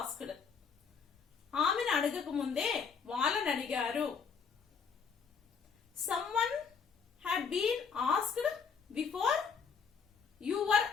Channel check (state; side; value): quieter; right; 6.0 dB